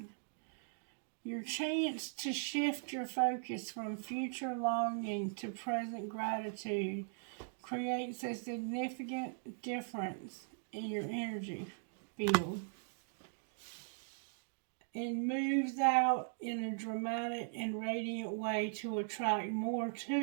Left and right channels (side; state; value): left; silent; digital silence